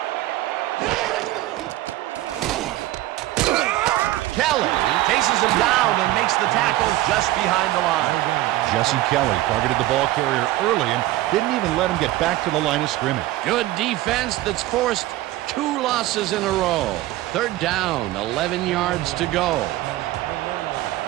Kelly chases him down and makes the tackle just behind the line. Jesse Kelly targeted the ball carrier early and didn't even let him get back to the line of scrimmage. Good defense that's forced 2 losses in a row. 3rd down, 11 yards to go.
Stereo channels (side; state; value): left; quieter; 16.4 dB